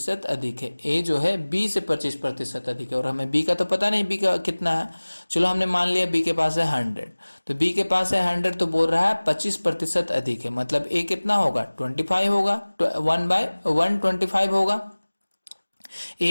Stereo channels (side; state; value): both; inverted; correlation -1.00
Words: अधिक है, ए जो है बी से 25% अधिक है, और हमें बी का तो पता नहीं बी का कितना है। चलो हमने मान लिया बी के पास है 100, तो बी के पास है 100 तो बोल रहा है 25% अधिक है, मतलब ए कितना होगा 25 होगा, 1/125 होगा।